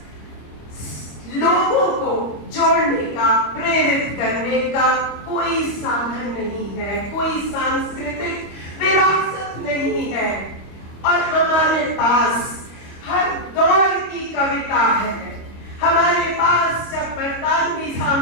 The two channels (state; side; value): late; right; 25 ms